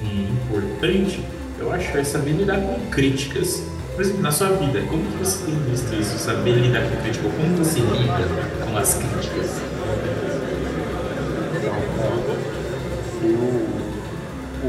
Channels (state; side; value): identical; both; correlation 1.00